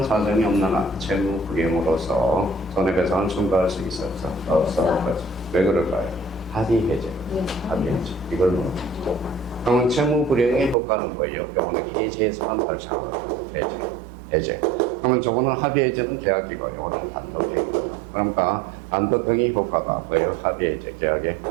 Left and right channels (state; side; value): drops out; left; at 10.8 s